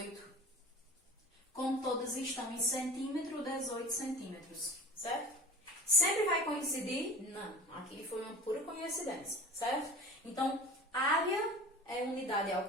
Como todas estão em centímetro, 18 centímetros, certo? Sempre vai coincidir? Não, aqui foi uma pura coincidência, certo? Então, área é unidade ao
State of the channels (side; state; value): both; normal; correlation 0.38